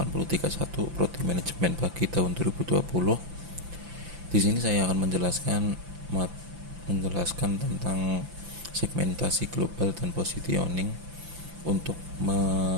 Prodi Manajemen Pagi tahun 2020. Di sini saya akan menjelaskan tentang segmentasi global dan positioning untuk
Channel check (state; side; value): late; left; 5.9 ms